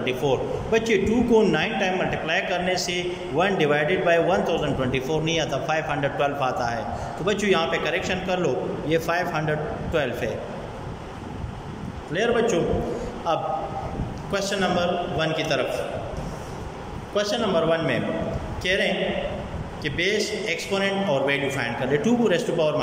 बच्चे 2 को 9 टाइम मल्टीप्लाई करने से 1 डिवाइडेड बाई 1024 नहीं आता, 512 आता है। तो बच्चों यहाँ पे करेक्शन कर लो, ये 512 है। क्लियर बच्चों? अब क्वेश्चन नंबर 1 की तरफ। क्वेश्चन नंबर 1 में कह रहे हैं कि बेस, एक्सपोनेंट और वैल्यू फाइंड कर ले। 2 raise to power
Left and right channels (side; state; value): both; identical; correlation 1.00